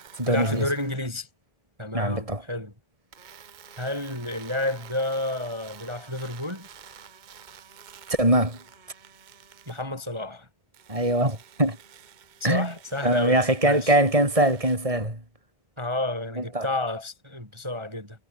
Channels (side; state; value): left; late; 1.7 ms